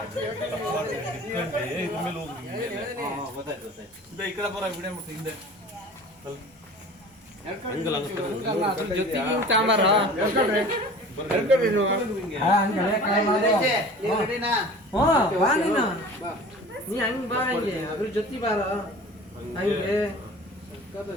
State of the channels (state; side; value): normal; both; correlation 0.42